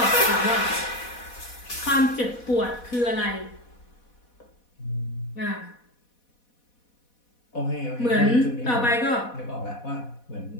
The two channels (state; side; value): late; right; 4.1 ms